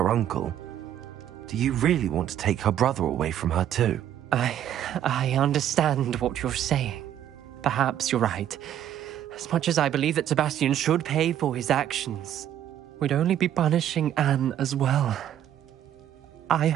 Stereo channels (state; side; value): quieter; left; 10.9 dB